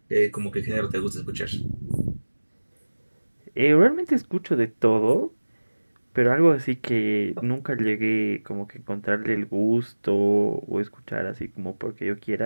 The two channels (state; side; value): inverted; both; correlation -1.00